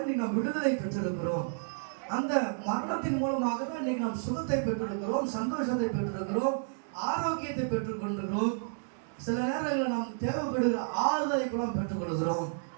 இன்னைக்கு நாம் விடுதலை பெற்றிருக்கிறோம். அந்த மரணத்தின் மூலமாக தான் இன்னைக்கு நாம் சுகத்தை பெற்றிருக்கிறோம், சந்தோஷத்தை பெற்றிருக்கிறோம், ஆரோக்கியத்தை பெற்றுக் கொண்டிருக்கிறோம். சில நேரங்களில் நாம் தேவைப்படுகிற ஆறுதலை கூட பெற்றுக்கொள்கிறோம்.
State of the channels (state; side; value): silent; left; digital silence